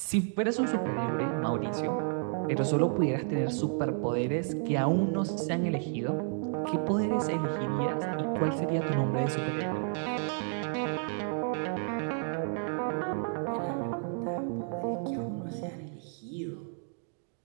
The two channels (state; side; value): silent; left; 57 dB below the other